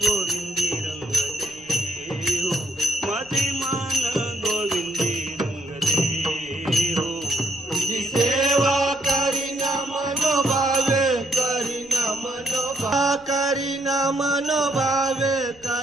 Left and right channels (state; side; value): noise; left; rumble, 27 dB below the sound